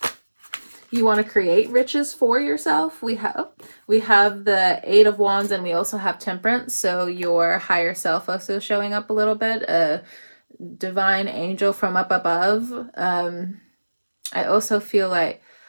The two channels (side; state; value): both; inverted; correlation -1.00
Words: You want to create riches for yourself. We have the Eight of Wands, and we also have Temperance. So your higher self also showing up a little bit. A divine angel from up above. I also feel like